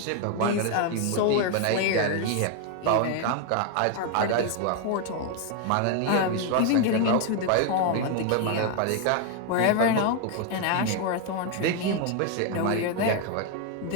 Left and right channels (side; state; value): both; different; correlation 0.01